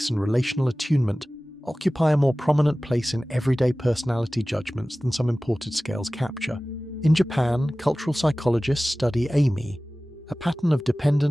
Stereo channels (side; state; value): both; normal; correlation 0.97